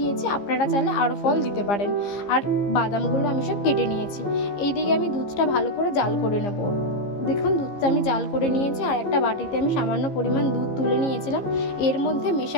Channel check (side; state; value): right; late; 15 ms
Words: আপনারা চাইলে আরও ফল দিতে পারেন। আর বাদামগুলো আমি সব কেটে নিয়েছি। এইদিকে আমি দুধটা ভালো করে জাল করে নেব। দেখুন দুধটা আমি জাল করে নিয়েছি। আর একটা বাটিতে আমি সামান্য পরিমাণ দুধ তুলে নিয়েছিলাম। এর মধ্যে